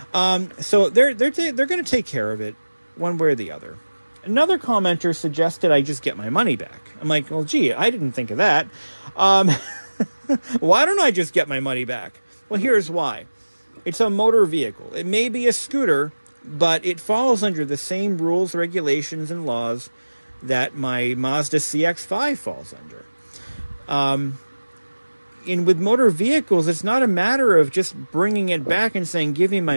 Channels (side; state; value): both; inverted; correlation -1.00